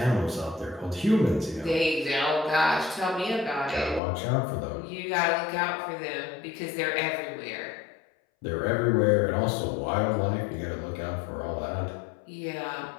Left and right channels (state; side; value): drops out; right; at 4.0 s